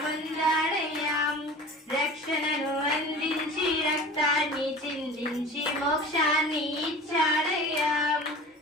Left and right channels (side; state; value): both; normal; correlation 0.38